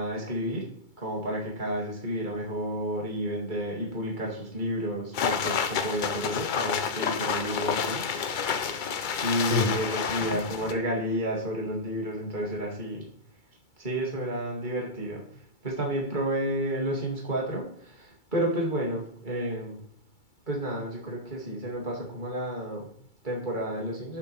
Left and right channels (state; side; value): late; right; 2.3 ms